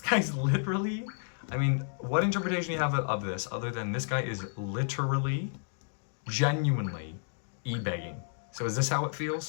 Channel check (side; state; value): right; silent; digital silence